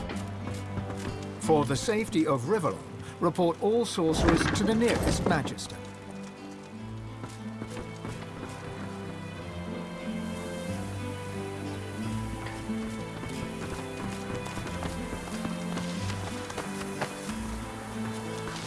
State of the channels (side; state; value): both; identical; correlation 1.00